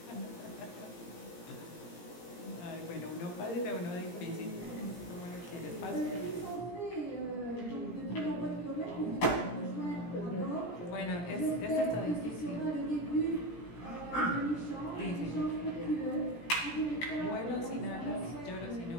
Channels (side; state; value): right; late; 17 ms